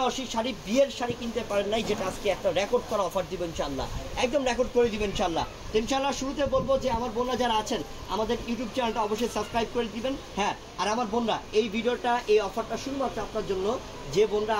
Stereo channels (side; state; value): both; identical; correlation 1.00